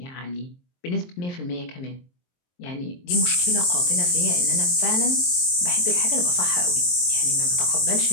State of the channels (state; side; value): late; right; 23 ms